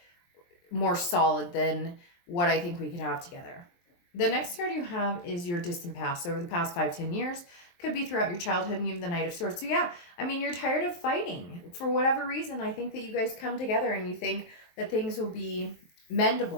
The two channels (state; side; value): late; right; 23 ms